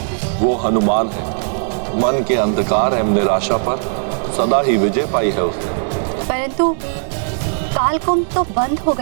वो हनुमान है। मन के अंधकार एवं निराशा पर सदा ही विजय पाई है उसने। परंतु कालकुंभ तो बंद हो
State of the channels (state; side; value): silent; left; digital silence